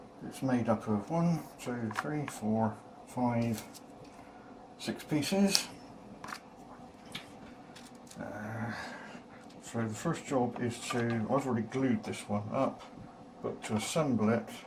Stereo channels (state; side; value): identical; both; correlation 1.00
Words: It's made up of 1, 2, 3, 4, 5, 6 pieces. So the first job is I've already glued this one up, but to assemble it